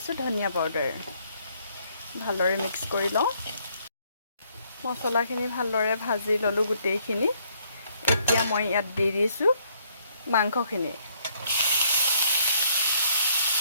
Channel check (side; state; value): both; inverted; correlation -0.68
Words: ধনিয়া পাউডাৰ। ভালদৰে মিক্স কৰি লওঁ। মছলাখিনি ভালদৰে ভাজি ল'লোঁ গোটেইখিনি। এতিয়া মই ইয়াত দি দিছোঁ মাংসখিনি।